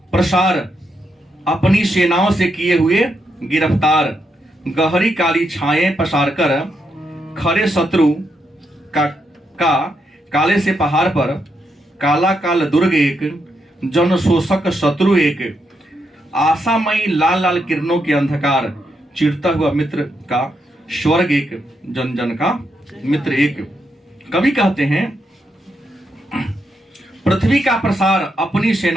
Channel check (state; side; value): normal; both; correlation 0.81